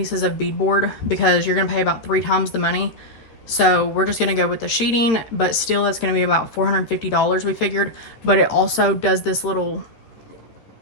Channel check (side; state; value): right; late; 13 ms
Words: of beadboard because you're going to pay about 3 times the money. So we're just going to go with the sheeting, but still that's going to be about $450 we figured. But it also does this little